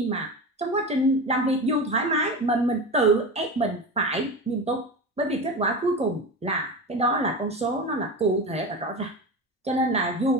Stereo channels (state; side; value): normal; both; correlation 0.26